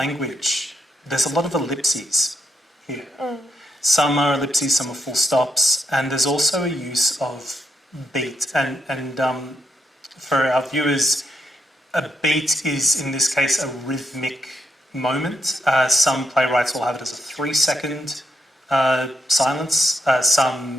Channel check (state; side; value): normal; both; correlation 0.82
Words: there's a lot of ellipses here. Some are ellipses, some are full stops, and there's also a use of beat. And for our viewers, a beat is, in this case, a rhythmic moment. Some playwrights will have it as a 3-second silence.